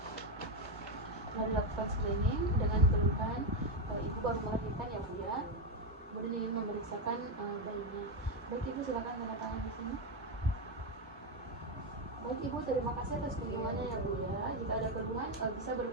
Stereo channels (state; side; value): normal; both; correlation 0.07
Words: Setelah dilakukan screening dengan keluhan ibu baru melahirkan ya Bu ya, kemudian ingin memeriksakan bayinya. Baik Ibu, silakan tanda tangan di sini. Baik Ibu, terima kasih atas kunjungannya ya Bu ya. Jika ada keluhan bisa